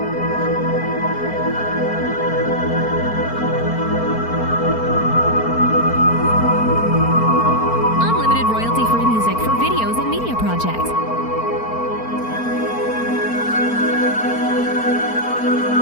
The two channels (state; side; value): late; right; 4.4 ms